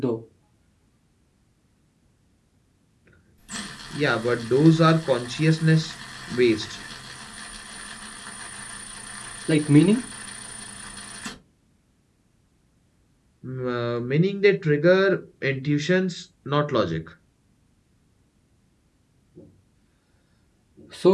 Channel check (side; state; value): both; identical; correlation 1.00